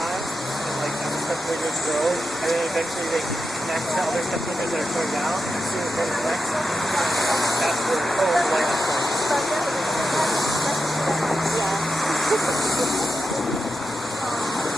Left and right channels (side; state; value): both; normal; correlation 0.89